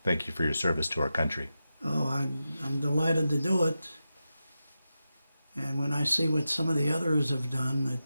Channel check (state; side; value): inverted; both; correlation -0.91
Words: thank you for your service to our country. Oh, I'm delighted to do it. And when I see what some of the others have done,